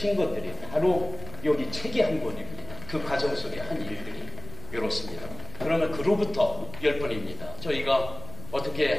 것들이 바로 여기 책이 한 권입니다. 그 과정 속에 한 일들이 이렇습니다. 그러면 그로부터 10번입니다. 저희가 어떻게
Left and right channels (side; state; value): left; noise; rumble, 13 dB below the sound